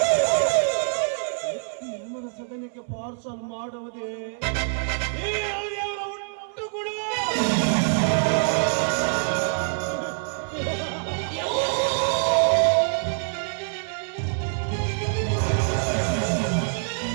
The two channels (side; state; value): left; silent; 62 dB below the other